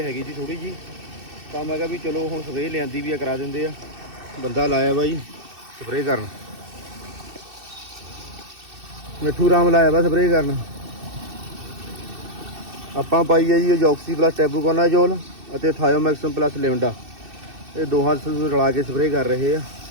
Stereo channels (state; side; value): late; left; 2.6 ms